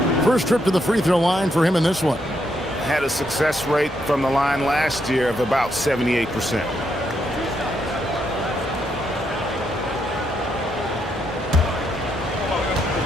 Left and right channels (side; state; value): both; normal; correlation 0.78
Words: First trip to the free throw line for him in this one. Had a success rate from the line last year of about 78%.